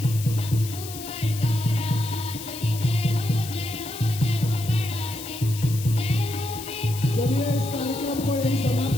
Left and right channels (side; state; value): left; noise; hiss, 11 dB below the sound